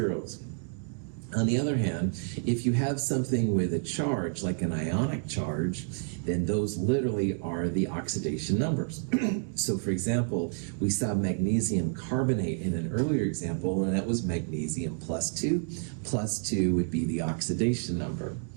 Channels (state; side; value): silent; left; 58 dB below the other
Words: On the other hand, if you have something with a charge, like an ionic charge, then those literally are the oxidation numbers. So for example, we saw magnesium carbonate in an earlier example, and that was magnesium plus 2. Plus 2 would be the oxidation number.